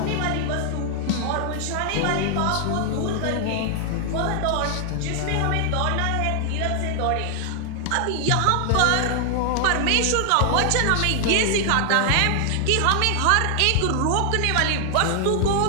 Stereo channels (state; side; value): different; both; correlation 0.00